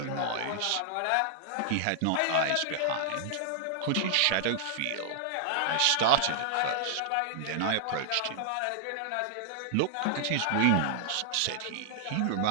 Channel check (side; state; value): both; different; correlation 0.00